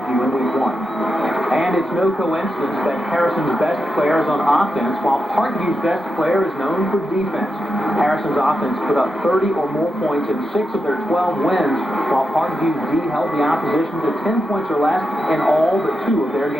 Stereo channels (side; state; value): both; normal; correlation 0.87